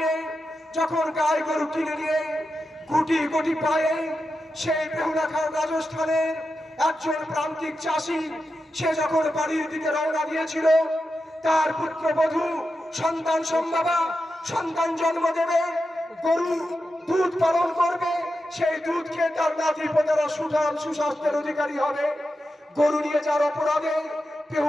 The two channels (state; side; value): normal; both; correlation 0.90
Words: যখন গায়ে গরু কিনে নিয়ে গুটি গুটি পায়ে সেই বেহুলা খান রাজস্থানের একজন প্রান্তিক চাষি, সে যখন বাড়ির দিকে রওনা দিয়েছিল, তার পুত্রবধূ সন্তান সম্ভাবা সন্তান জন্ম দেবে, গরু দুধ পালন করবে, সেই দুধ খেয়ে তার নাতি পোতারা সুস্বাস্থ্যের অধিকারী হবে। গরু নিয়ে যার অপরাধে